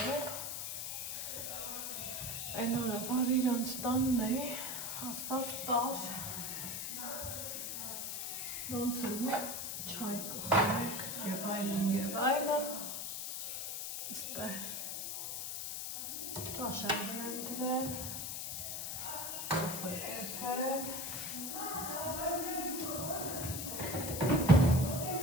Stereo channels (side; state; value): left; noise; hiss, 4 dB below the sound